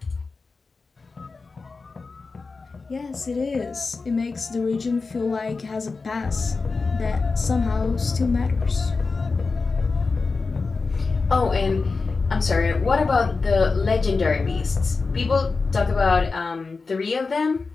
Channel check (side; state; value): right; quieter; 4.2 dB